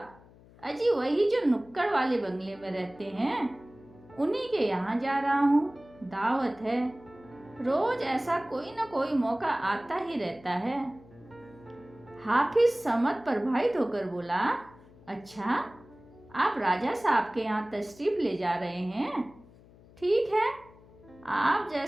अजी वही जो नुक्कड़ वाले बंगले में रहते हैं, उन्हीं के यहाँ जा रहा हूँ। दावत है। रोज ऐसा कोई न कोई मौका आता ही रहता है। हाफिज समझ प्रभावित होकर बोला, अच्छा आप राजा साहब के यहाँ तशरीफ ले जा रहे हैं? ठीक है, आप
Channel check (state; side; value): noise; left; hum, 24 dB below the sound